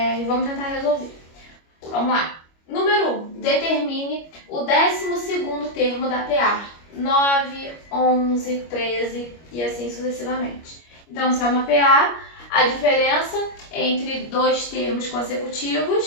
vamos tentar resolver. Vamos lá. Número 1. Determine o 12º termo da PA. 9, 11, 13 e assim sucessivamente. Então, se é uma PA, a diferença entre 2 termos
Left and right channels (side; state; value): right; late; 25 ms